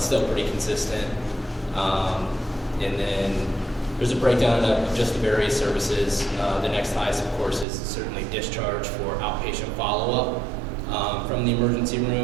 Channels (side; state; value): left; drops out; at 7.7 s